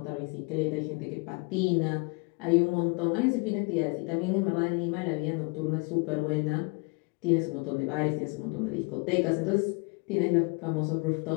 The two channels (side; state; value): right; quieter; 31.4 dB